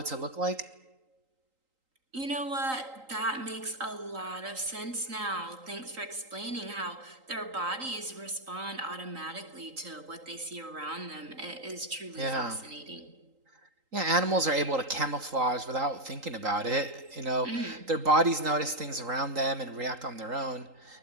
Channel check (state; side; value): late; left; 3.8 ms